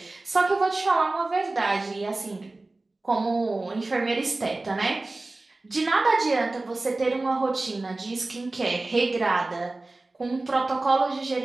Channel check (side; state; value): left; quieter; 3.1 dB